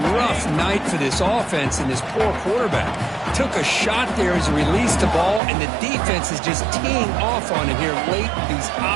rough night for this offense and this poor quarterback. Took a shot there as he released the ball, and the defense is just teeing off on it here late in these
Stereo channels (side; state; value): left; drops out; at 5.4 s